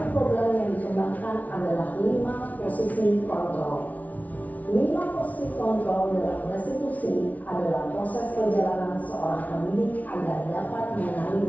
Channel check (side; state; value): right; late; 0.072 ms